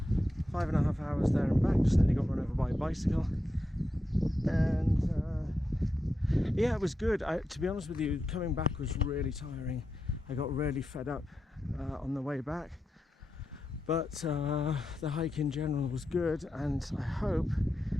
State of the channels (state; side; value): normal; both; correlation 0.88